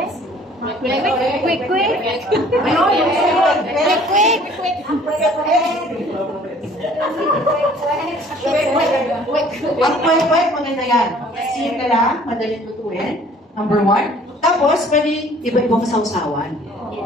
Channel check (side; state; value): both; normal; correlation 0.54